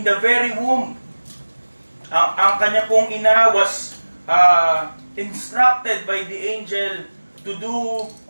the very womb. Ang kanya pong ina was instructed by the angel to do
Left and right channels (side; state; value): both; inverted; correlation -1.00